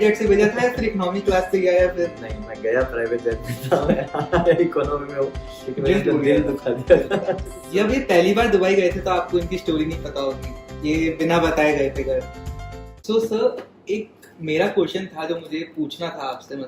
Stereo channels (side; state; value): both; identical; correlation 1.00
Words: जेट से भेजा था या फिर इकोनॉमी क्लास से गया या फिर? नहीं, मैं गया प्राइवेट जेट में था, मैं इकोनॉमी में हूँ क्योंकि मैंने दिल टूट दिल गया। दुखा दिया था। जब ये पहली बार दुबई गए थे तो आपको इनकी स्टोरी नहीं पता होगी, ये बिना बताए गए थे घर। सो सर, एक मेरा क्वेश्चन था जो मुझे पूछना था आपसे,